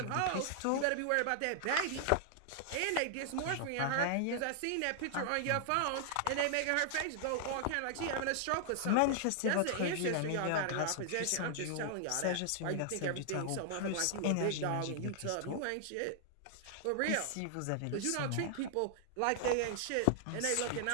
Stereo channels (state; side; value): different; both; correlation -0.01